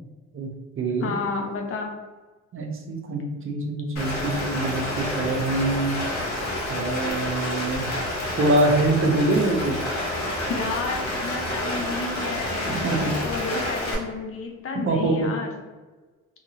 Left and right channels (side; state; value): both; normal; correlation 0.17